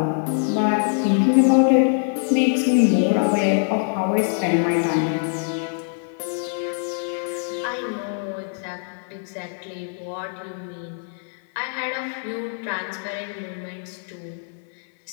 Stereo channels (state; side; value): silent; right; 63 dB below the other